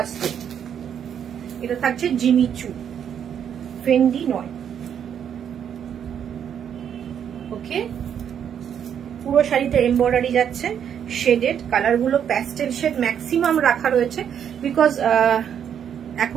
এটা থাকছে জিমিচু, ফেন্ডি নয়। ওকে, পুরো শাড়িতে এমব্রয়ডারি যাচ্ছে, শেডেড। কালারগুলো প্যাস্টেল শেড ম্যাক্সিমাম রাখা রয়েছে, বিকজ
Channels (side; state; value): left; quieter; 8.6 dB